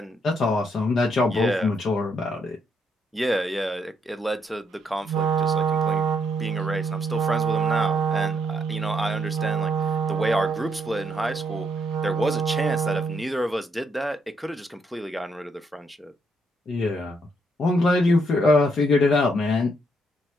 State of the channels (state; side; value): normal; both; correlation 0.74